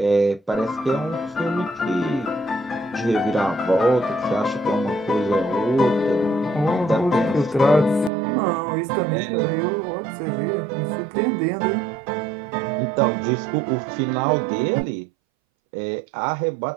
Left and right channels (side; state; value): left; drops out; at 8.1 s